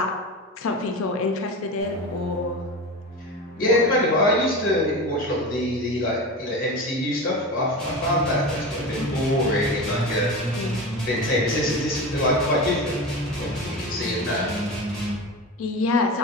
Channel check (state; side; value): normal; both; correlation 0.27